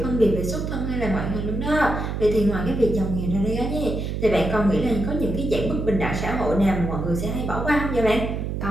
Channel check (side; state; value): right; noise; hum, 3 dB below the sound